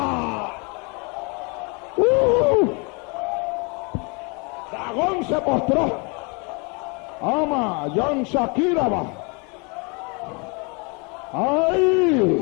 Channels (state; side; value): quieter; right; 31.9 dB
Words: Dagón se postró. Ama, Jan Shakira va.